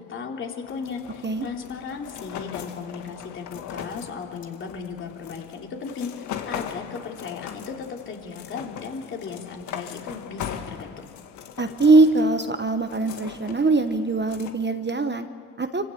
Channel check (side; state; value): both; normal; correlation 0.48